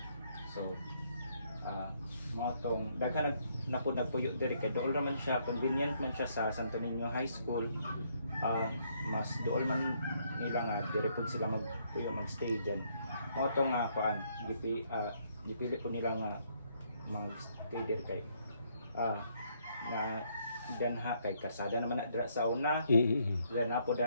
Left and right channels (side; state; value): both; inverted; correlation -0.71